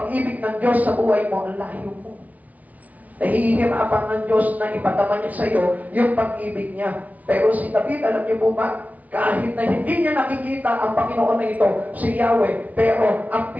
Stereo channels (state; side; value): late; left; 0.073 ms